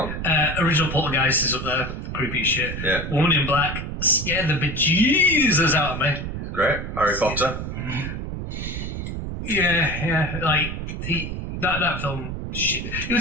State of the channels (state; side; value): noise; right; rumble, 6 dB below the sound